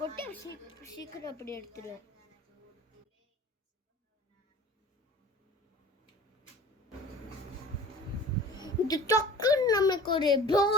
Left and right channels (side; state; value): both; normal; correlation 0.42